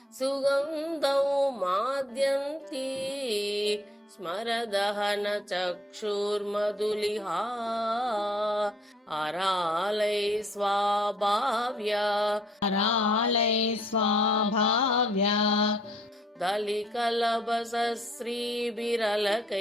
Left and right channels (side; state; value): both; normal; correlation 0.63